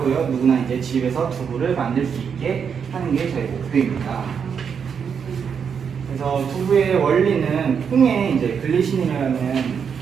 누구나 이제 집에서 두부를 만들 수 있게 하는 게 저희 목표입니다. 그래서 두부의 원리는 콩에 이제 글리신이라는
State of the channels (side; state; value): left; quieter; 6.9 dB